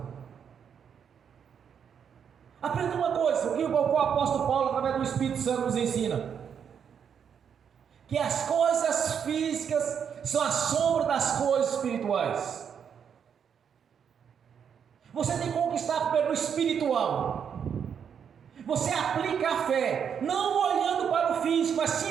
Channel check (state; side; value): quieter; left; 7.6 dB